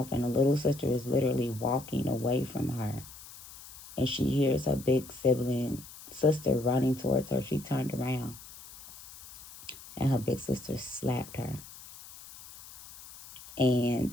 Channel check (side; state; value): left; noise; hiss, 17 dB below the sound